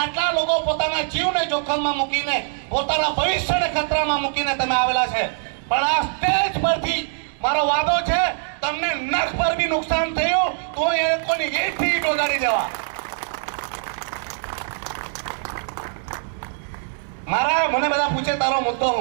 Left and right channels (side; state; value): left; silent; 64 dB below the other